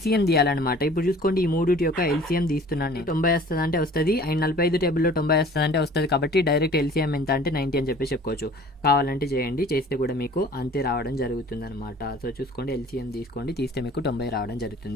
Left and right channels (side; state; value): both; normal; correlation 0.48